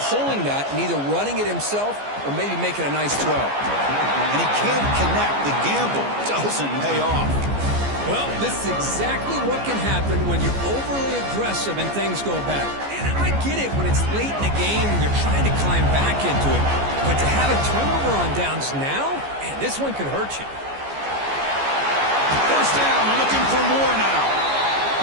pulling that and either running it himself or maybe making a nice throw. And he can't connect. The gamble doesn't pay off. Well, this is exactly what can happen when you're overly aggressive and things go bad. And I get it when it's late in the game and you're trying to climb back into it. But to have a turnover on downs now, man, this one could hurt you. First down, looking for more now.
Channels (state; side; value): late; left; 14 ms